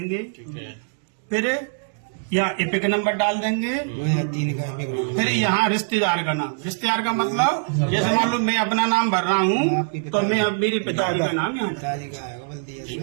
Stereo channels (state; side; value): silent; left; 63 dB below the other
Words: फिर यहाँ एपिक नंबर डाल देंगे। फिर यहाँ रिश्तेदार का नाम। रिश्तेदार का मतलब जैसे मान लो मैं अपना नाम भर रहा हूँ तो मैं अब मेरी पिताजी का नाम यहाँ।